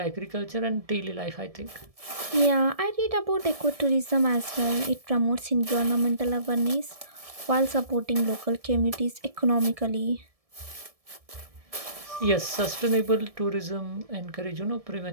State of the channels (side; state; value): left; late; 1.7 ms